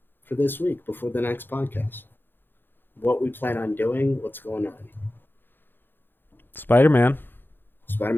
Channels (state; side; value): late; right; 0.098 ms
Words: for this week before the next podcast. What we plan on doing, what's going on. Spider-Man.